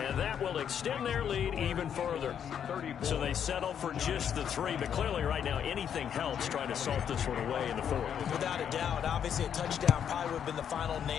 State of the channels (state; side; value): quieter; right; 8.5 dB